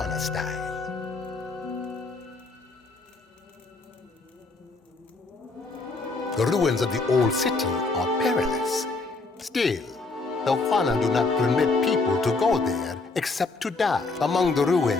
style. The ruins of the old city are perilous. Still, the Juana do not permit people to go there except to die. Among the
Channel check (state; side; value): quieter; right; 3.7 dB